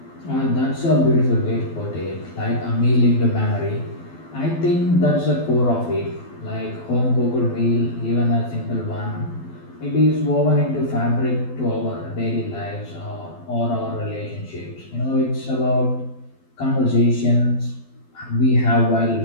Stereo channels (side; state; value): right; late; 12 ms